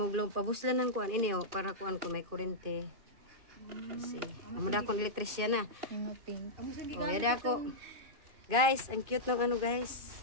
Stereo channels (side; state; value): left; late; 2.5 ms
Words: pabuslan ng kuan ini oh para kuan ko may kurente. Kasi amuda akong elektrisyan na. Oh, yada ako. Guys, ang cute ng ano, guys.